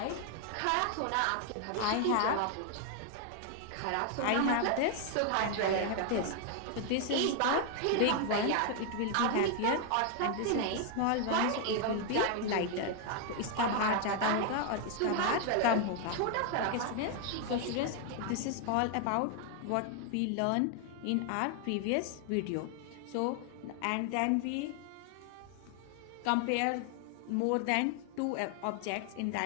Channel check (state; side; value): different; both; correlation 0.00